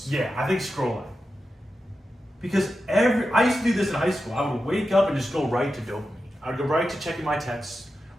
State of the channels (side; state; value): both; normal; correlation 0.91